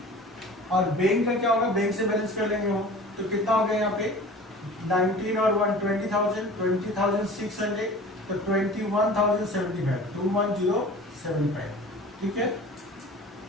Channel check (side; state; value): both; normal; correlation 0.41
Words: और बैंक का क्या होगा, बैंक से बैलेंस कर लेंगे हम। तो कितना हो गया यहाँ पे 19 और 1 20,000 20,600, तो 21,075 21,075, ठीक है।